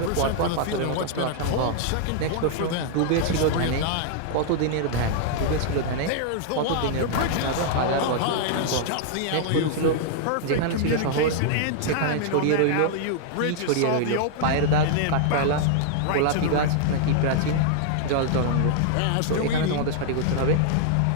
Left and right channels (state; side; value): different; both; correlation -0.01